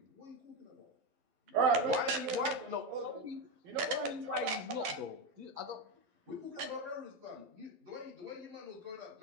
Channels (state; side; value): late; left; 12 ms